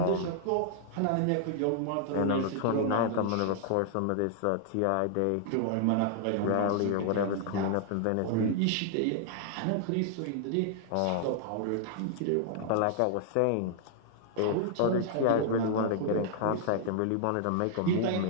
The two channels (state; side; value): different; both; correlation -0.01